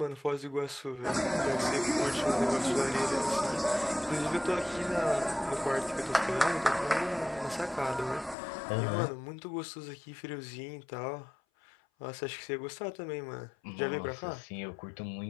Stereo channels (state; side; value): drops out; right; at 8.3 s